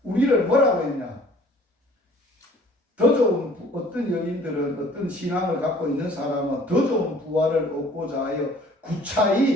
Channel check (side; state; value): both; normal; correlation 0.53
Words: 우리를 뭐라고 했냐? 더 좋은 어떤 여인들은 어떤 신앙을 갖고 있는 사람은 더 좋은 부활을 얻고자 하여